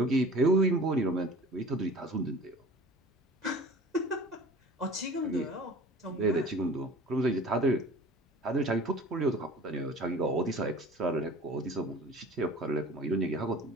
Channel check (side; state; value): both; normal; correlation 0.43